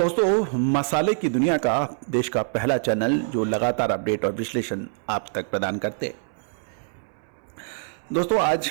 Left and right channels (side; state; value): left; silent; 62 dB below the other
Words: मसाले की दुनिया का देश का पहला चैनल जो लगातार अपडेट और विश्लेषण आप तक प्रदान करते हैं। दोस्तों, आज